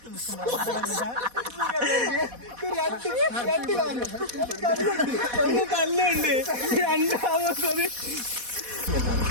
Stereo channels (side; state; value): left; late; 4.1 ms